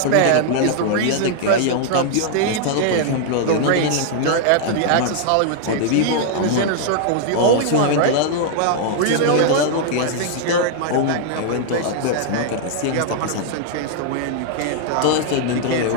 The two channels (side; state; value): both; different; correlation -0.01